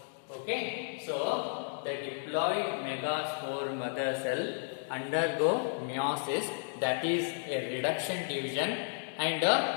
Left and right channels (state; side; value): silent; right; digital silence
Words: Okay, so the diploid megaspore mother cell undergo meiosis, that is a reduction division, and